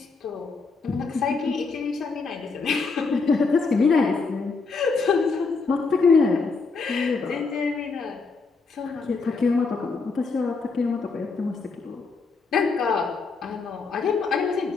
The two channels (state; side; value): quieter; right; 4.4 dB